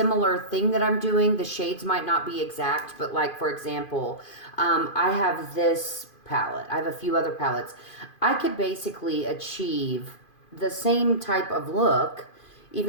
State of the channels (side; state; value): right; late; 2.5 ms